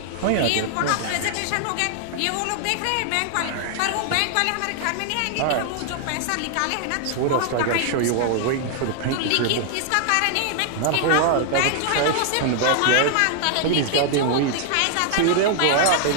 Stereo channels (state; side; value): different; both; correlation 0.00